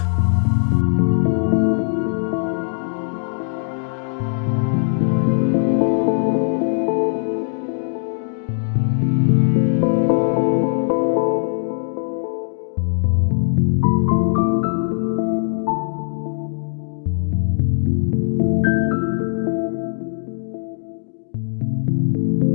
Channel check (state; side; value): silent; right; digital silence